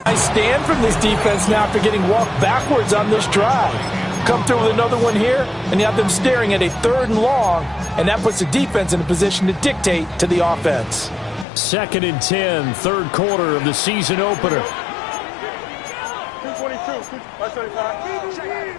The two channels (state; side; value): drops out; right; at 11.5 s